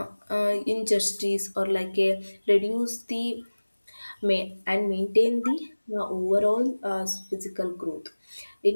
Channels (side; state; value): both; inverted; correlation -1.00